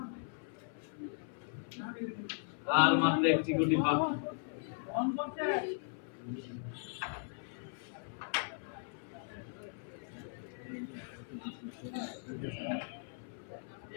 আর মাত্র একটি গুটি বাকি। অন করতে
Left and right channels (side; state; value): right; silent; 53 dB below the other